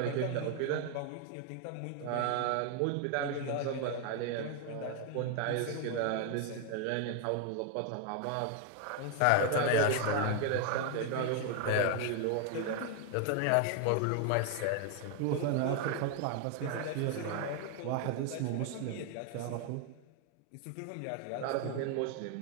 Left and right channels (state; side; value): different; both; correlation 0.00